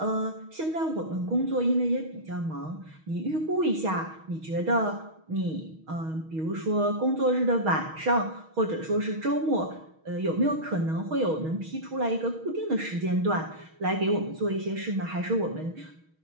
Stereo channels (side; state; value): left; late; 6.3 ms